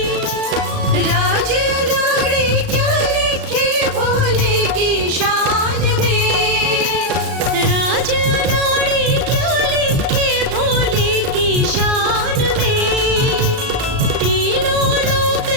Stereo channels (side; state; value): left; late; 36 ms